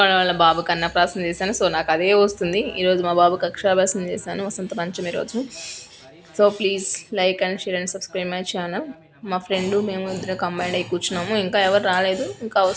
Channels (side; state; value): both; identical; correlation 1.00